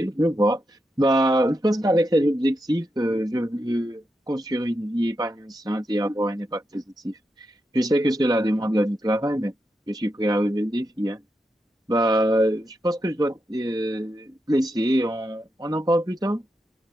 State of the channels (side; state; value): both; normal; correlation 0.86